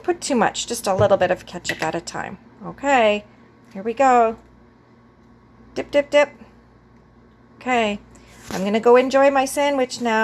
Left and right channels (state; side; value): identical; both; correlation 1.00